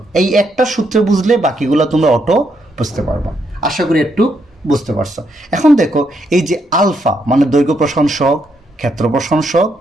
এই একটা সূত্রে বুঝলে বাকিগুলো তোমরা অটো বুঝতে পারবা। আশা করি একটু বুঝতে পারছো। এখন দেখো এই যে আলফা মানে দৈর্ঘ্য প্রসারণ সহগ, ক্ষেত্র প্রসারণ সহগ,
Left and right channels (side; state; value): both; normal; correlation 0.77